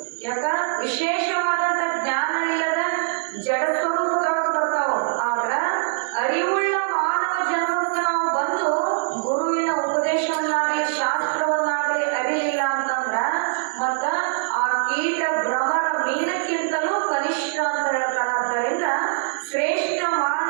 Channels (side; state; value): left; silent; 63 dB below the other